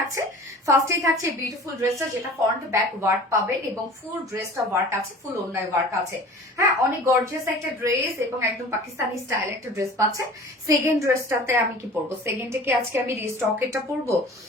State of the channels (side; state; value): both; normal; correlation 0.43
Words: ফার্স্টেই থাকছে বিউটিফুল ড্রেসটা, যেটা ফ্রন্ট ব্যাক ওয়ার্ক পাবেন এবং ফুল ড্রেসটা ওয়ার্ক আছে, ফুল ওন্নায় ওয়ার্ক আছে। হ্যাঁ, অনেক গর্জিয়াস একটা ড্রেস এবং একদম পাকিস্তানি স্টাইল একটা ড্রেস পাচ্ছেন। সেকেন্ড ড্রেসটাতে আমি কি পরবো? সেকেন্ডে কি আজকে আমি রিস্টকেটটা পরবো?